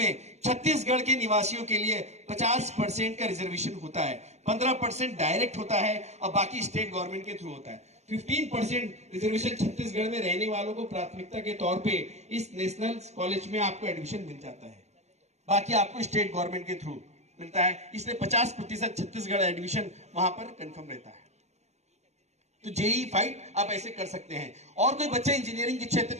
छत्तीसगढ़ के निवासियों के लिए 50% का रिजर्वेशन होता है, 15% डायरेक्ट होता है और बाकी स्टेट गवर्नमेंट के थ्रू होता है। 15% रिजर्वेशन छत्तीसगढ़ में रहने वालों को प्राथमिकता के तौर पे इस नेशनल कॉलेज में आपको एडमिशन मिल जाता है, बाकी आपको स्टेट गवर्नमेंट के थ्रू मिलता है। इसलिए 50% छत्तीसगढ़ एडमिशन वहां पर कंफर्म रहता है। तो जेई फाइट आप ऐसे कर सकते हैं। और कोई बच्चा इंजीनियरिंग के क्षेत्र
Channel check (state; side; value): late; left; 0.32 ms